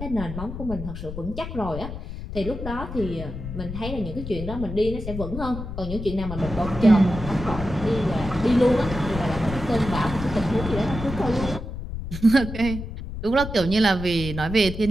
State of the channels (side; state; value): left; noise; rumble, 8 dB below the sound